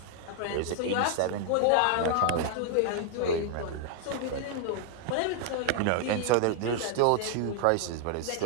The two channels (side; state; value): both; different; correlation 0.00